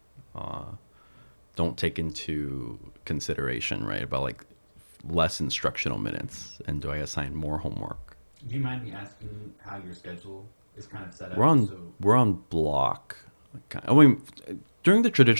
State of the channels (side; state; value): both; inverted; correlation -1.00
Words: uh, don't take into consideration, right? About like less instructional minutes, and do I assign more homework? Do you mind me asking how your schedule is kind of set up? We're on So, we're on block. I mean, during the